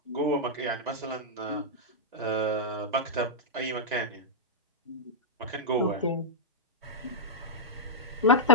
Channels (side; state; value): both; normal; correlation -0.08